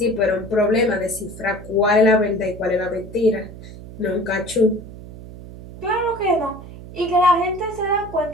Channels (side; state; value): right; noise; hum, 15 dB below the sound